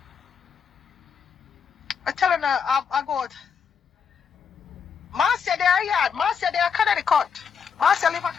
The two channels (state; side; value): quieter; right; 6.6 dB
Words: I telling her, I go, Marcia there yard. Marcia there Connecticut. Marcia live in